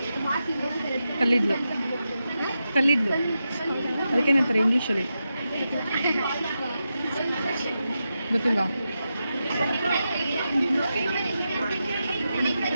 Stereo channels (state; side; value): inverted; both; correlation -0.89